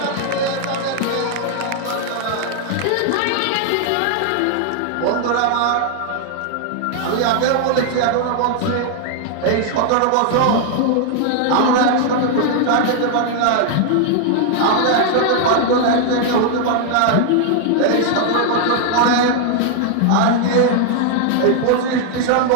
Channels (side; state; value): both; different; correlation 0.00